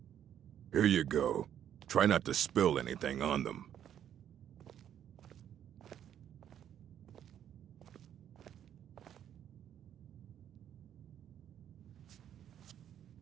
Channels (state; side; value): quieter; left; 10.0 dB